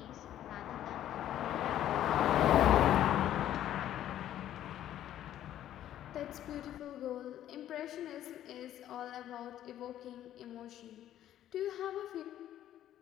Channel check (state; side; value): quieter; right; 11.9 dB